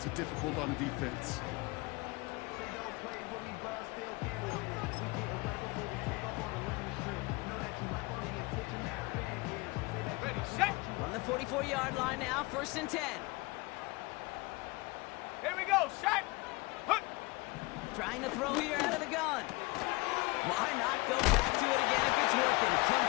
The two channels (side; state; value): right; quieter; 24.9 dB